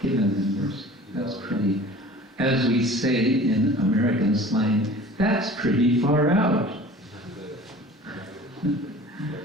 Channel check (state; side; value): normal; both; correlation 0.43